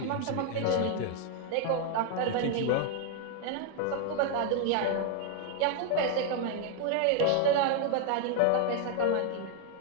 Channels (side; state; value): both; different; correlation 0.00